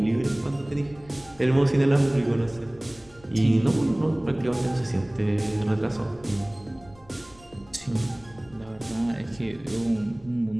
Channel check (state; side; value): noise; left; rumble, 25 dB below the sound